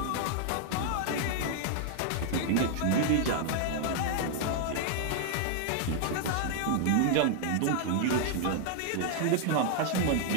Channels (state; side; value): different; both; correlation 0.00